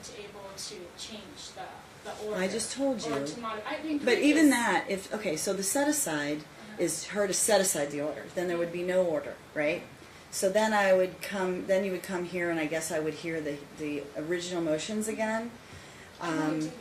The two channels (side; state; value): both; identical; correlation 1.00